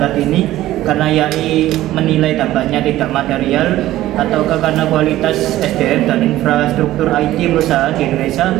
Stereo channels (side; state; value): left; quieter; 14.9 dB